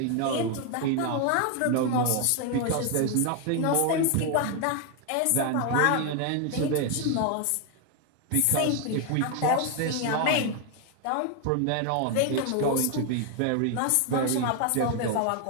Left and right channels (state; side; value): different; both; correlation 0.01